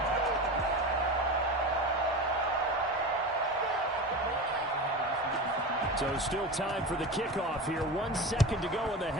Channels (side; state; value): both; normal; correlation 0.27